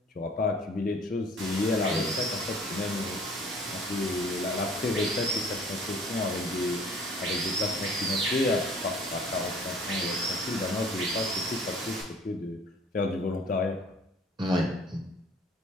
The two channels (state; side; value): normal; both; correlation 0.52